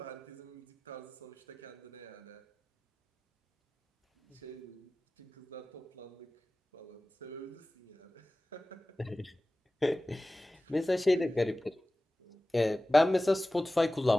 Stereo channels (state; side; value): normal; both; correlation 0.97